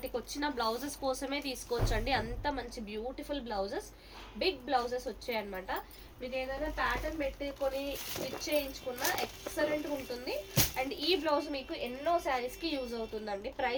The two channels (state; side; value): identical; both; correlation 1.00